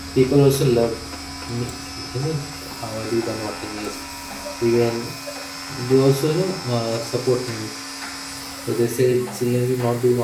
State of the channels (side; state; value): both; identical; correlation 1.00